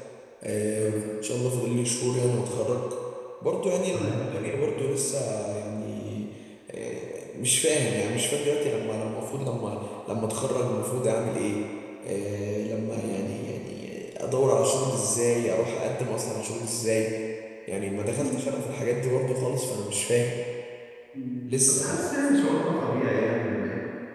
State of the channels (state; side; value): identical; both; correlation 1.00